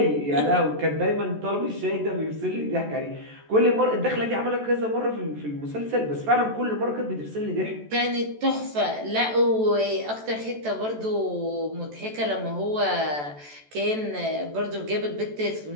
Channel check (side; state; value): left; late; 14 ms